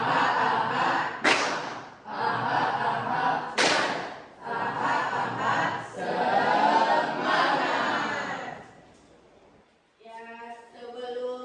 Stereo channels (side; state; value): both; identical; correlation 1.00